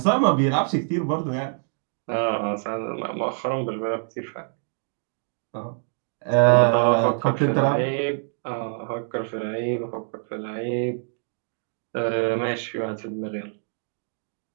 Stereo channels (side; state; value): left; silent; 61 dB below the other